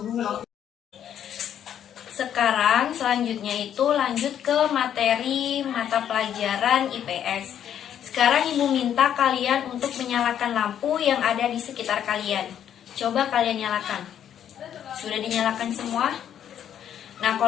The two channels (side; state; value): right; quieter; 9.8 dB